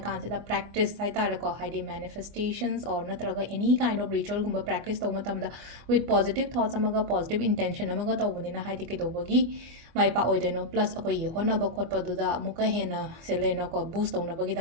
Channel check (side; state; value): left; late; 24 ms